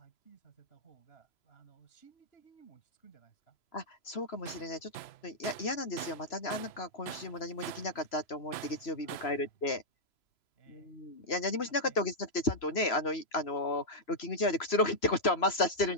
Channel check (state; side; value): late; right; 3.0 ms